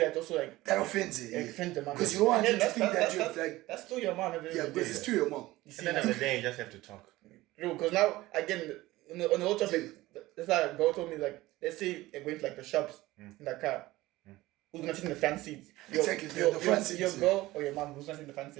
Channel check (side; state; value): left; quieter; 18.1 dB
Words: also like that offends it. Offends the mom. Because you don't want to think that you're like that's still your mom. Yeah, because it's still your mom. At the end of the day, you just have to talk. Because now again on the whole topic, that's how a girl told me like, let's say you're going to like the shops in the car. Who's gonna sit in the front seat? Exactly, the front seat. Your girl or your mom? Who's gonna sit in the front